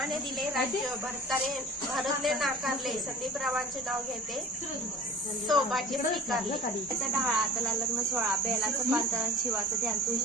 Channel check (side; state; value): both; normal; correlation 0.41